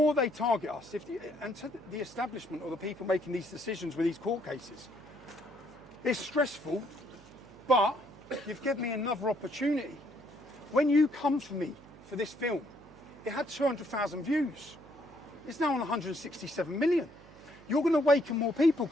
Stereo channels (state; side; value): noise; right; hum, 22 dB below the sound